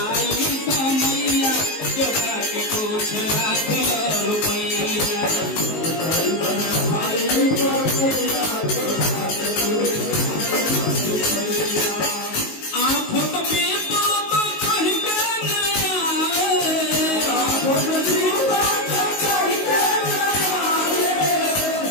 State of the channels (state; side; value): late; right; 19 ms